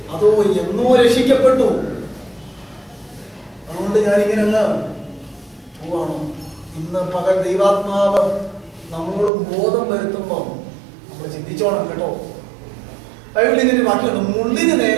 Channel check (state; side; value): drops out; left; at 9.3 s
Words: അതോ എന്നോ രക്ഷിക്കപ്പെട്ടു അതുകൊണ്ട് ഞാനിങ്ങനെ അങ്ങ് പോവാണോ? ഇന്ന് പകൽ ദൈവാത്മാവ് നമ്മളോട് ബോധം വരുത്തുമ്പോൾ നമ്മൾ ചിന്തിച്ചോണം കേട്ടോ. ബൈബിളിൽ ഇതിന്റെ വാക്യമുണ്ട്, മുള്ളിന്